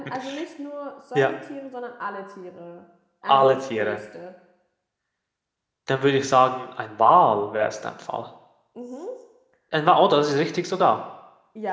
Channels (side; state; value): both; identical; correlation 1.00